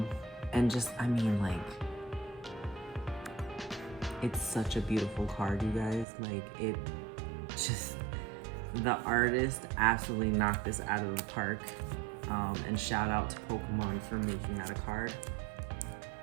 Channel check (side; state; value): left; drops out; at 6.1 s